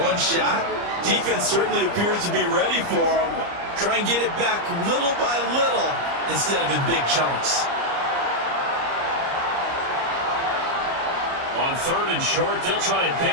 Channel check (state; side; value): late; left; 30 ms